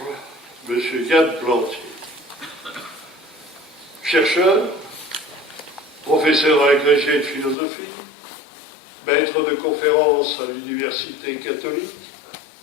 M. Yann Plantier. Chercheur, professeur agrégé de philosophie, maître de conférences à l'université catholique,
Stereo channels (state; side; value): drops out; right; at 7.6 s